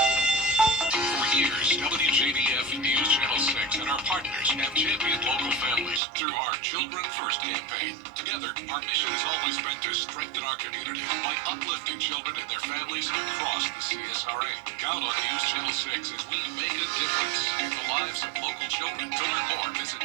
For years, WJBF News Channel 6 and our partners have championed local families through our Children First campaign. Together, our mission has always been to strengthen our community by uplifting children and their families across the CSRA. Count on News Channel 6 as we make a difference in the lives of local children. To learn more, visit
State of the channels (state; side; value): drops out; left; at 6.0 s